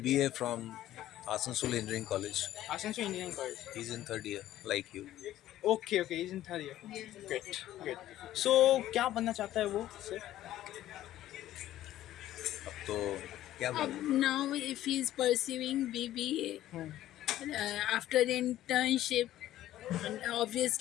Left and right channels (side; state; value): right; quieter; 13.6 dB